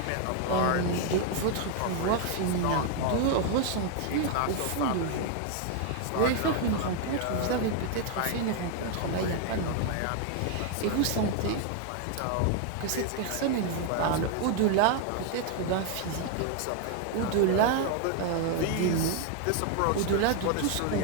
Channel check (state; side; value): different; both; correlation 0.00